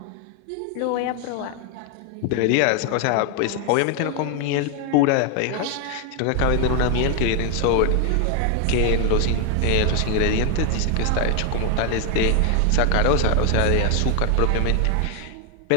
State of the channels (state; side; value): different; both; correlation 0.00